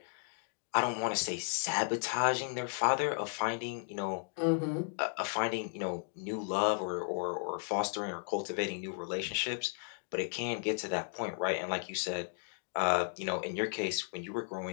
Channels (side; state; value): right; silent; 55 dB below the other